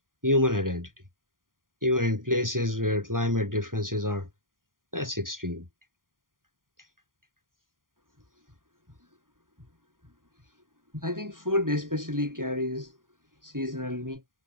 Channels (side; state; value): left; late; 0.91 ms